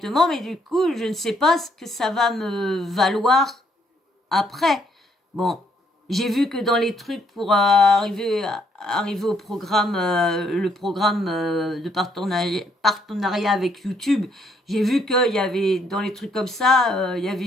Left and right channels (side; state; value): both; normal; correlation 0.70